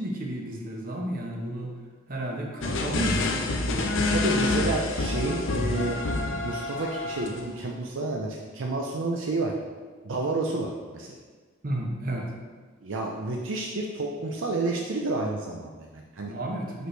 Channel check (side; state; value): both; normal; correlation 0.43